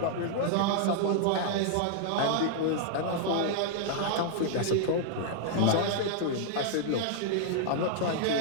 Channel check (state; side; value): different; both; correlation -0.01